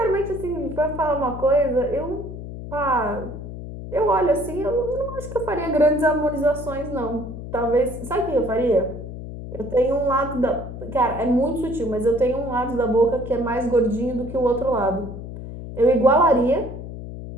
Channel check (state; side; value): noise; left; hum, 10 dB below the sound